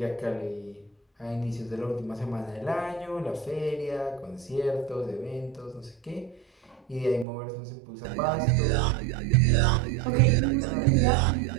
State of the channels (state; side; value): drops out; left; at 7.2 s